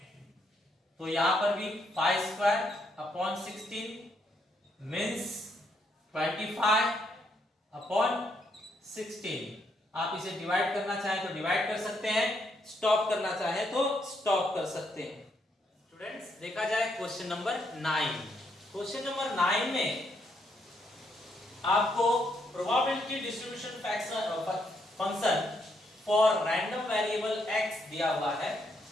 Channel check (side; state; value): both; normal; correlation 0.75